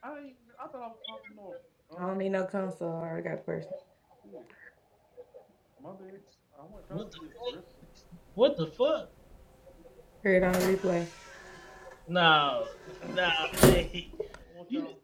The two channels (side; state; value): both; identical; correlation 1.00